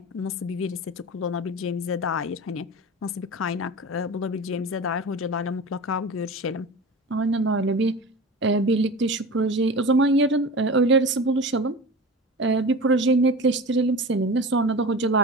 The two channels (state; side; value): normal; both; correlation 0.32